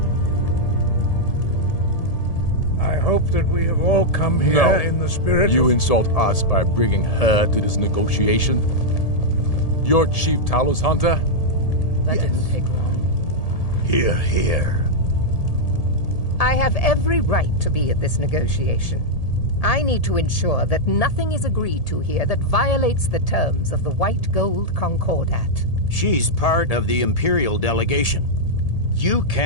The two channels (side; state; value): right; late; 1.8 ms